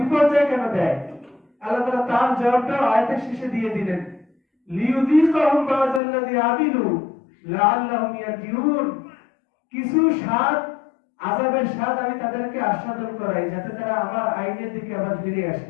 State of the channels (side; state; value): right; drops out; at 6.0 s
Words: বিপর্যয় কেন দেয়? আল্লাহ তাআলা তার জবাবটা আয়াতের শেষে দিয়ে দিলেন, লিইউযীকাহুম বা'যাল্লাযী আমিলু লাআল্লাহুম ইয়ারজিউন। কিছু স্বাদ, আযাবের স্বাদ আমি তাদেরকে আস্বাদন করাই যাতে তারা আমার আইনের দিকে আবার ফিরে